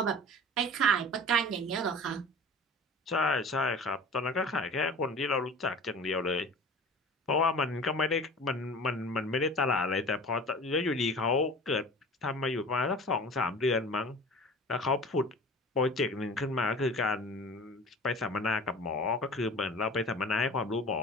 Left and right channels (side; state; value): both; normal; correlation 0.40